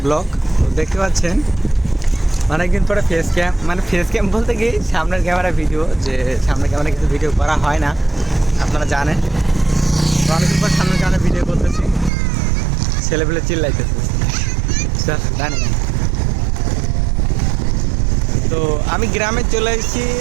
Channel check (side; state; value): left; drops out; at 12.1 s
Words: blog. দেখতে পাচ্ছেন অনেকদিন পরে ফেস ক্যাম বলতে গিয়ে সামনের ক্যামেরা ভিডিও, যে সামনের ক্যামেরা কিছু ভিডিও করা হয় না, আপনারা জানেন। তো অনেকদিন পর সামনের ক্যামেরা ভিডিও করতেছি, ছেলেপেলে চিল্লাইতেছে জানি। তো আমি গ্রামে চলে এসেছি।